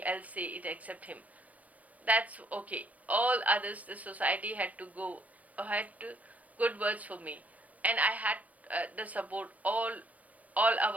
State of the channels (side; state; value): left; late; 0.070 ms